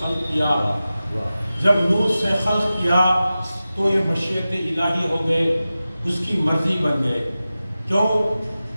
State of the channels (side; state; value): both; inverted; correlation -0.95